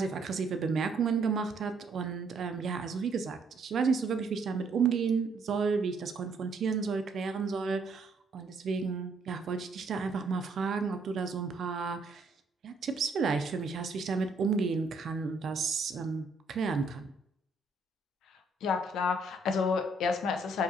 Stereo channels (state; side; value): quieter; left; 3.1 dB